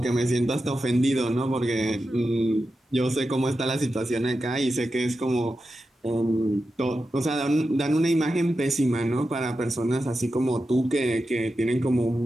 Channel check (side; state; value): both; normal; correlation 0.90